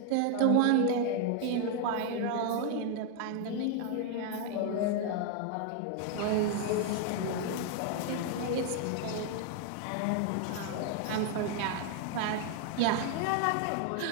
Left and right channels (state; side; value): different; both; correlation 0.00